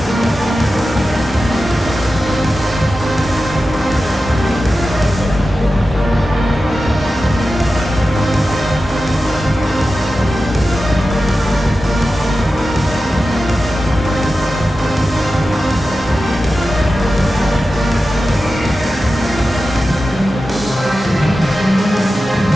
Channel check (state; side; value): normal; both; correlation 0.93